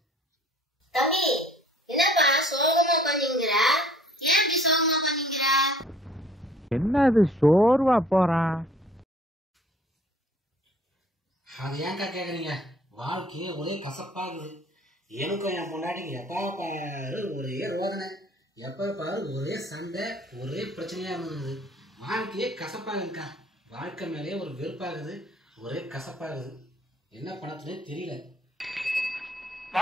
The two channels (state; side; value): normal; both; correlation 0.55